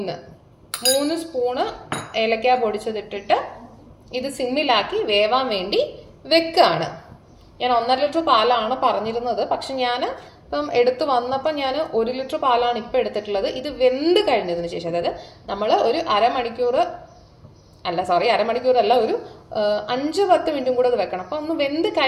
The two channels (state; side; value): identical; both; correlation 1.00